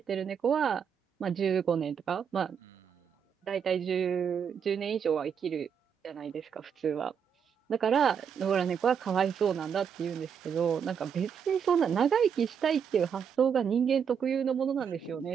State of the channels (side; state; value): left; quieter; 7.3 dB